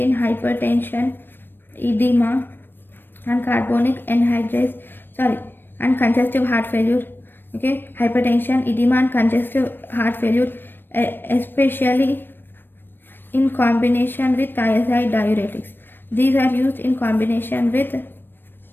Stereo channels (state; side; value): late; right; 0.096 ms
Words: hypertension, edema, and carbonic anhydrase, and congestive heart failure. Okay, hypertension, edema, and congestive heart failure, especially in combination with thiazide diuretics. These are used in combination with